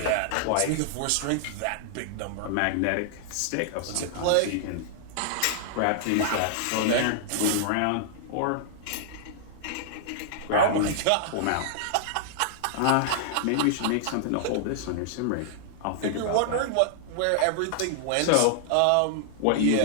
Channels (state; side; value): different; both; correlation -0.01